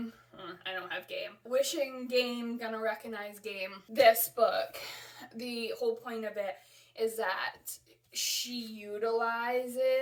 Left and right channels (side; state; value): both; identical; correlation 1.00